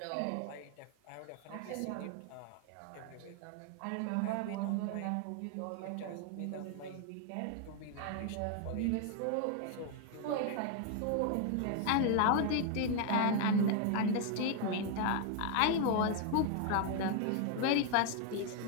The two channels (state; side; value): different; both; correlation 0.00